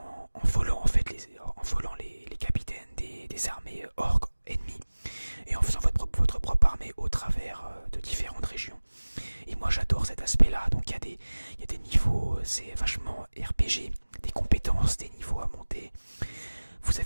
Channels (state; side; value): inverted; both; correlation -1.00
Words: volant en fait les capitaines des armées orques ennemies, et en faisant votre propre armée au travers de différentes régions. Et moi j'adore cet aspect là, donc il y a des niveaux, c'est vachement RPG, des compétences, des niveaux à monter. Vous